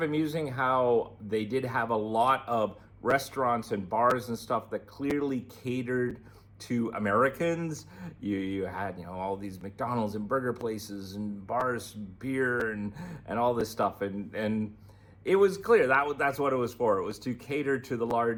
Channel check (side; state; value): both; identical; correlation 1.00